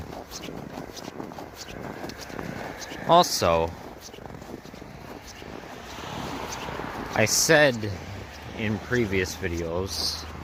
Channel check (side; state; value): both; identical; correlation 1.00